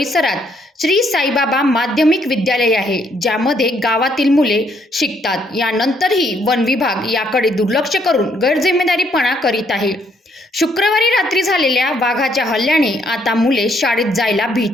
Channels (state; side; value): normal; both; correlation 0.70